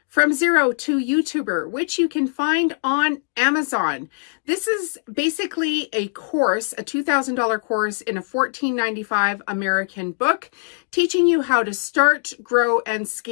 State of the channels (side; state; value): right; silent; 64 dB below the other